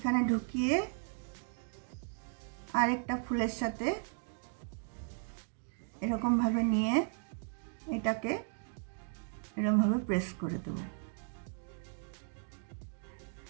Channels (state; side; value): silent; left; 54 dB below the other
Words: ঢুকিয়ে আরেকটা ফুলের সাথে এরকম ভাবে নিয়ে এটাকে এরকম ভাবে প্রেস করে দেবো।